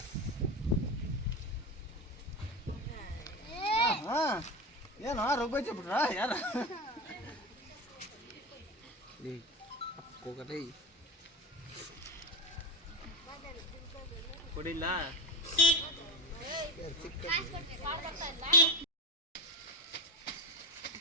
ಏನೋ ರೋಗ ಬಿಟ್ರ ಯಾರ ಕೊಡಿಲ್ಲ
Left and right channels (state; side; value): normal; both; correlation 0.20